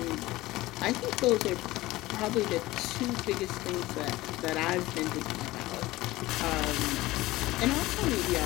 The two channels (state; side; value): quieter; right; 18.3 dB